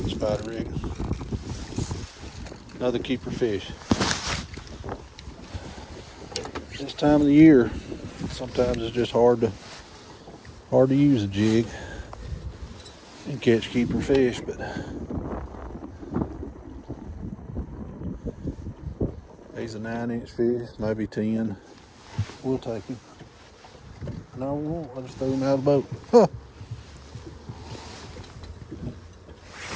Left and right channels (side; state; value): both; identical; correlation 1.00